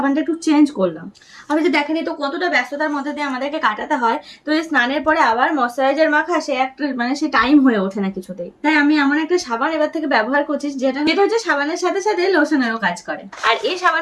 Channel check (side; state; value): both; identical; correlation 1.00